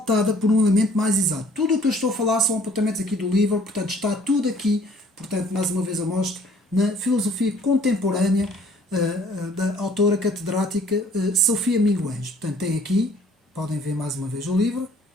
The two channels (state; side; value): normal; both; correlation 0.57